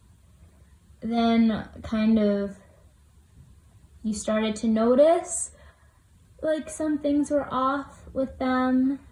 then kind of you started to notice like some things were off with them,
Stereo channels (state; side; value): identical; both; correlation 1.00